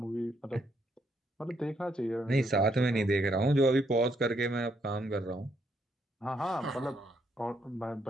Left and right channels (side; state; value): both; normal; correlation 0.74